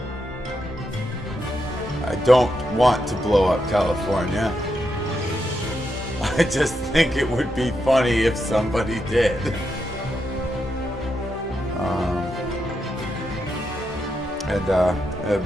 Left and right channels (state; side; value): normal; both; correlation 0.83